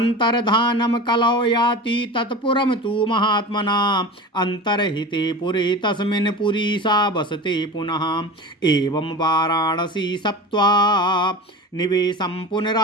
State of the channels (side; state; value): both; normal; correlation 0.32